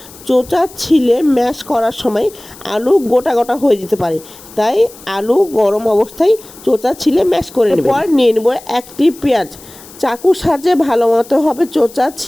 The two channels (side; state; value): left; noise; hiss, 20 dB below the sound